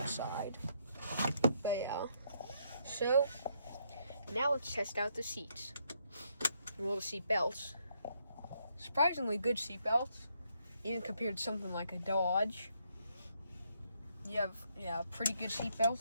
But yeah, so now let's test out the seats. Well, the seat belts. Surprisingly good seat belts, even compared to something like a Dodge. You have pretty good seat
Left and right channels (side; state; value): both; inverted; correlation -0.74